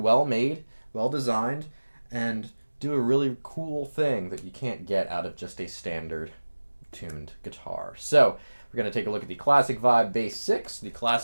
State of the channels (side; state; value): both; inverted; correlation -1.00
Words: made, well designed, and do a really cool thing that you can't get out of just a standard tuned guitar. So we're going to take a look at the Classic Vibe Bass 6, the